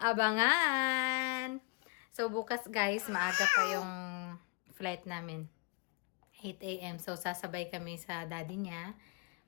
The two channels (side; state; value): right; quieter; 28.5 dB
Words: Abangan! So, bukas guys, maaga pa yung flight namin. 8 a.m. So, sasabay kami sa daddy niya.